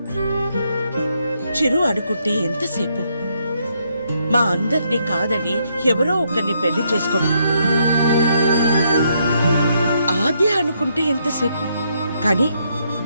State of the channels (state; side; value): inverted; both; correlation -0.75